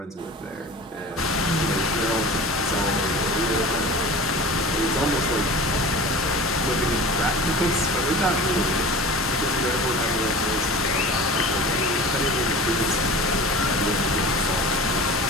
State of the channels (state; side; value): normal; both; correlation 0.37